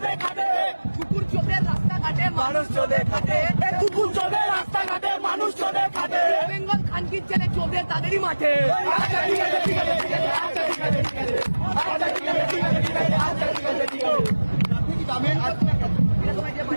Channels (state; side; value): inverted; both; correlation -1.00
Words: খাটে। কুকুর চোদে রাস্তাঘাটে মানুষ চোদে খাটে। কুকুর চোদে রাস্তাঘাটে মানুষ চোদে খাটে। বেঙ্গল খানকির ছেলে চোদে তাদেরই মাঠে। আচ্ছা ঠিক আছে ঠিক আছে ঠিক আছে আচ্ছা ঠিক আছে ঠিক আছে আচ্ছা ঠিক আছে ঠিক আছে ঠিক আছে আচ্ছা ঠিক আছে ঠিক আছে।